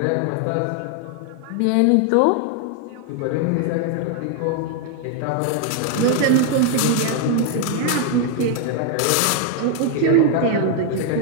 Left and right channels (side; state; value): both; different; correlation 0.00